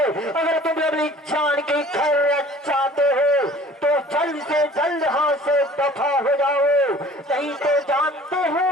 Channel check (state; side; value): normal; both; correlation 0.48